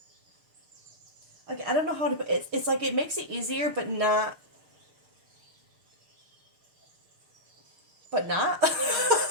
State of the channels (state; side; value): late; left; 6.6 ms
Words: like, I don't know how to put it. It's like it makes it easier, but not.